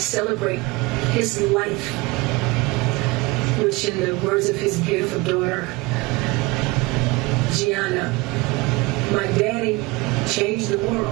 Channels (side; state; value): left; quieter; 23.8 dB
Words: his life, which in the words of his beautiful daughter, Gianna, my daddy changed the